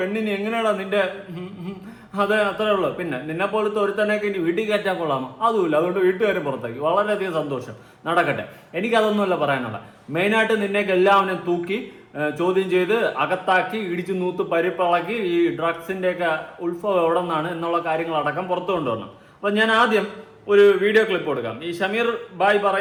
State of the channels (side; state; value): both; identical; correlation 1.00